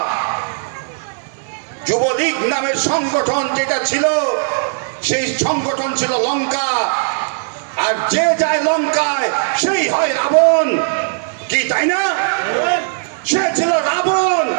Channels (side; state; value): left; silent; digital silence